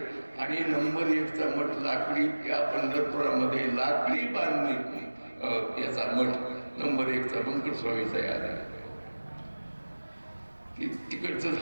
आणि नंबर 1चा मठ लाकडी, या पंढरपुरामध्ये लाकडी बांधणी याचा मठ नंबर 1चा बंकट स्वामीचा याद आहे. तिकडचं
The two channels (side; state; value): both; inverted; correlation -1.00